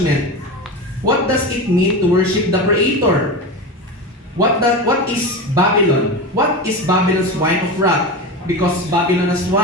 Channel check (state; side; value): normal; both; correlation 0.24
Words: What does it mean to worship the Creator? What is Babylon? What is Babylon's wine of wrath? Because Babylon has